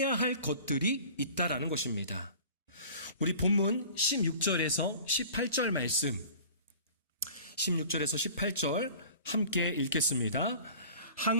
할 것들이 있다라는 것입니다. 우리 본문 16절에서 18절 말씀, 16절에서 18절 함께 읽겠습니다.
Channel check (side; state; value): both; inverted; correlation -0.44